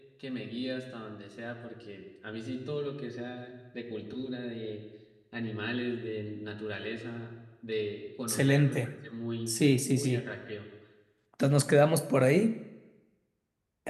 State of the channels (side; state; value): both; identical; correlation 1.00